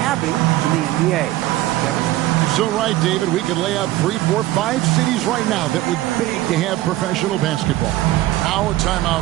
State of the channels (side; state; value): left; quieter; 16.1 dB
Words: having in the NBA. Kevin? You're so right, David. We could lay out 3, 4, 5 cities right now that would beg to have professional basketball. Now a